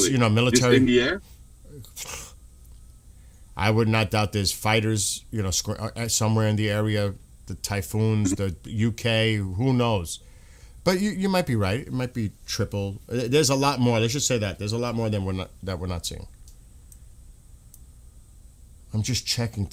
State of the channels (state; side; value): identical; both; correlation 1.00